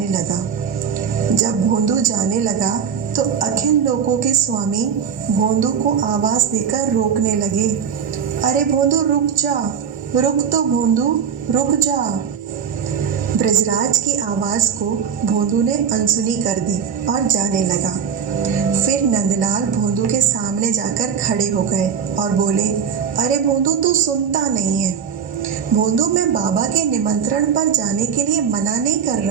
लगा। जब भोंदू जाने लगा तो अखिल लोकों के स्वामी भोंदू को आवाज देकर रोकने लगे। अरे भोंदू रुक जा, रुक तो भोंदू, रुक जा। ब्रजराज की आवाज को भोंदू ने अनसुनी कर दी और जाने लगा। फिर नंदलाल भोंदू के सामने जाकर खड़े हो गए और बोले, अरे भोंदू तू सुनता नहीं है। भोंदू, मैं बाबा के निमंत्रण पर जाने के लिए मना नहीं कर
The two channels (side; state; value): left; quieter; 7.3 dB